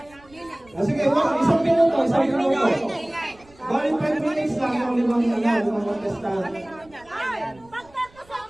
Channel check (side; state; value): right; noise; rumble, 27 dB below the sound